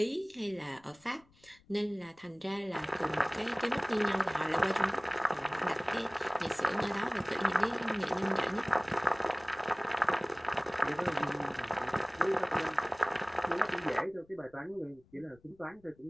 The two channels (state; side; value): noise; left; rumble, 29 dB below the sound